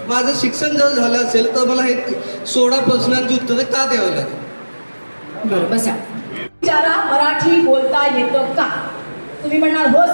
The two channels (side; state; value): both; inverted; correlation -1.00